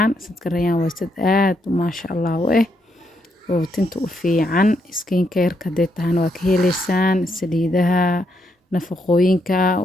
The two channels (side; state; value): both; normal; correlation 0.77